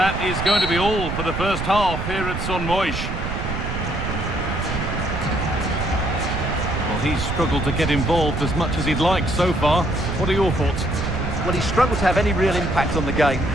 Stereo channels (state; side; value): noise; right; rumble, 4 dB below the sound